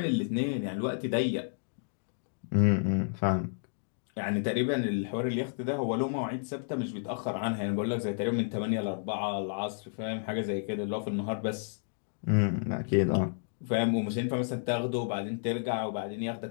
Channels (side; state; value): right; silent; digital silence